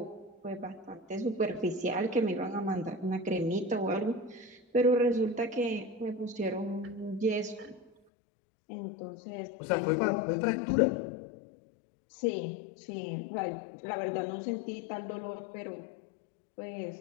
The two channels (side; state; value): right; drops out; at 7.9 s